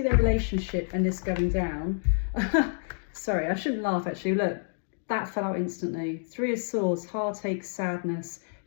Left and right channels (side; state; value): right; silent; digital silence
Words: their relationship and this going down. Sorry, I shouldn't laugh, actually. Look, that fell out instantly. Three of Swords, heartache, sadness.